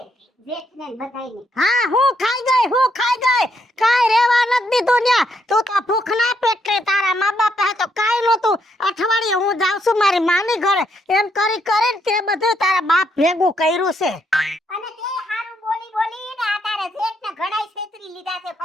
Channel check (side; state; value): both; normal; correlation 0.76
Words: જેઠને બધાઈને. હા હું ખાઈ ગઈ કાઈ રેવા નથી દીધું ન્યા. તું તો ભૂખના પેટે તારા મા બાપ હે તો કાઈ નહોતું. અઠવાડિયે હું જાઉં છું મારી માની ઘરે, એમ કરી કરીને તે બધું તારા બાપ ભેગું કર્યું છે. અને તે હારું બોલી ને આ તારા જેઠને ઘણાય છેતરી લીધા છે,